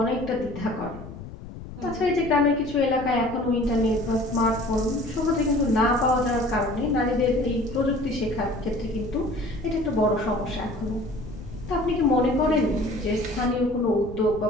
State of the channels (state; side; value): noise; left; rumble, 13 dB below the sound